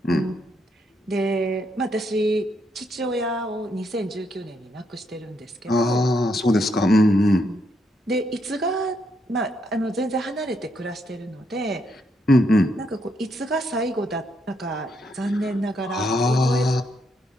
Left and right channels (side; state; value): both; normal; correlation 0.77